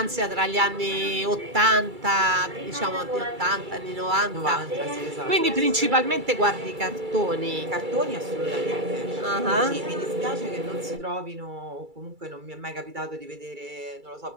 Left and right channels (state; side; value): late; left; 2.3 ms